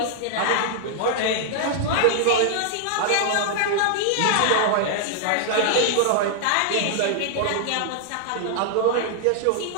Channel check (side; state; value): both; different; correlation -0.01